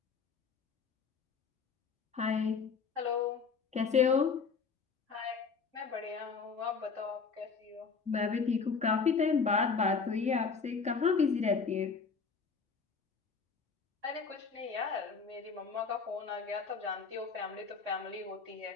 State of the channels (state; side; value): quieter; right; 5.3 dB